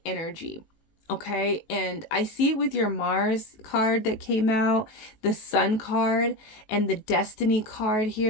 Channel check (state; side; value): late; right; 18 ms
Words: energy, okay? And I see it with your Mars card that came out, the Sun card, and the Destiny card